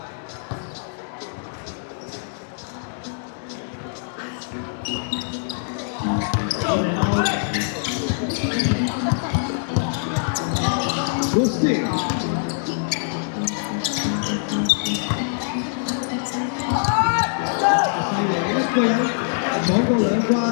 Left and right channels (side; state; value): right; silent; digital silence